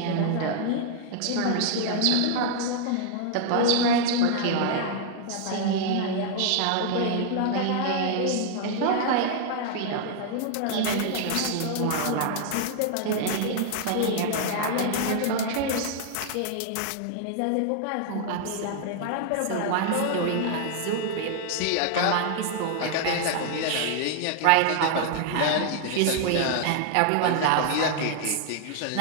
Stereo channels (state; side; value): different; both; correlation 0.00